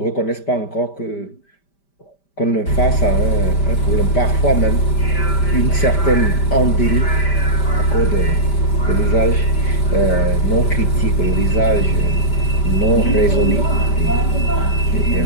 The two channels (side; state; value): right; late; 5.1 ms